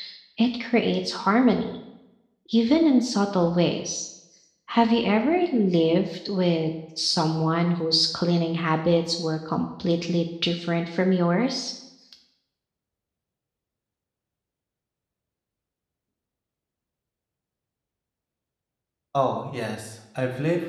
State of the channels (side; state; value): both; identical; correlation 1.00